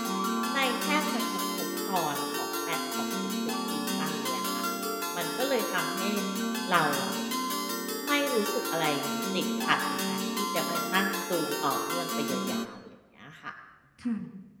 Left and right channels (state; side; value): identical; both; correlation 1.00